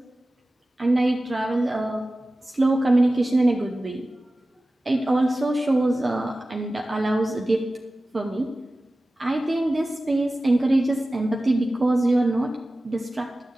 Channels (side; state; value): both; normal; correlation 0.96